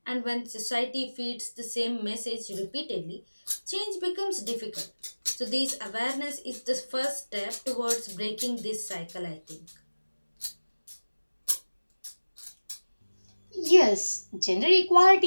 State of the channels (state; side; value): inverted; both; correlation -1.00